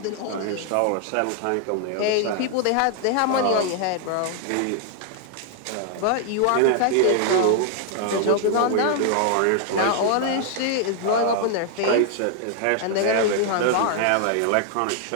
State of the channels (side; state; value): both; different; correlation 0.00